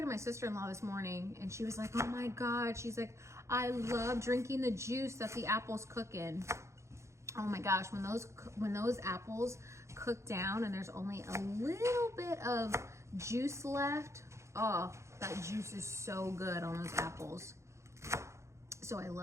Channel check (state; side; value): late; left; 0.14 ms